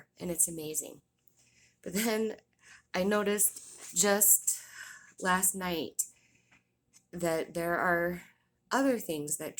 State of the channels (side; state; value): both; identical; correlation 1.00